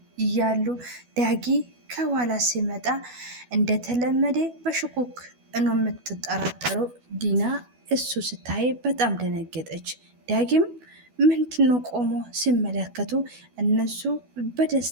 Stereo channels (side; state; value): left; late; 12 ms